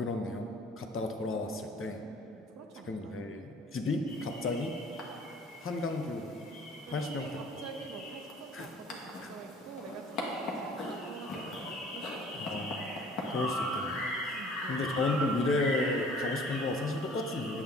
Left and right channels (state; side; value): normal; both; correlation 0.52